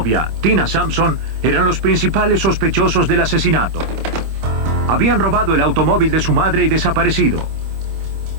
Tina Sampson, eran los principales sospechosos del asesinato. Habían robado el automóvil de su madre y desaparecido.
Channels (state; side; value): late; left; 26 ms